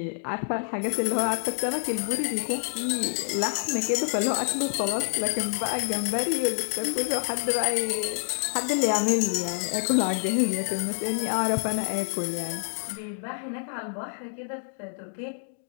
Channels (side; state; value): right; silent; digital silence